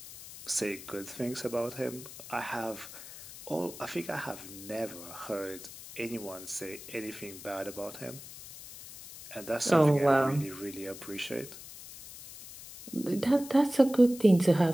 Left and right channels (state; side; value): noise; left; hiss, 15 dB below the sound